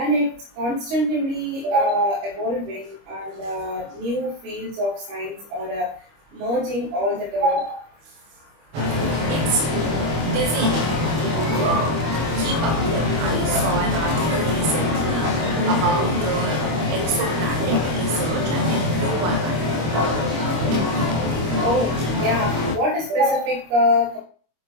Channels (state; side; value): late; left; 25 ms